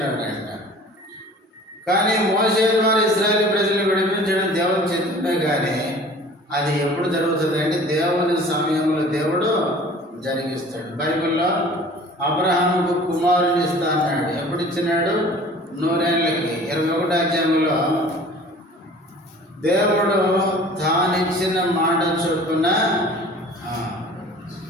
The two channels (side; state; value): both; normal; correlation 0.46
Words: కానీ మోసే ద్వారా ఇశ్రాయేలు ప్రజలు విడిపించడం దేవుని చిత్తమే. కానీ అది ఎప్పుడు జరుగుతుంది అంటే దేవుని సమయంలో దేవుడు జరిగిస్తాడు. బైబిల్లో అబ్రహాముకు కుమారుని ఇస్తా అన్నాడు. ఎప్పుడు ఇచ్చినాడు, 100 ఏళ్ళకి. 21వ అధ్యాయంలో దేవుడు తానిచ్చిన మాట చొప్పున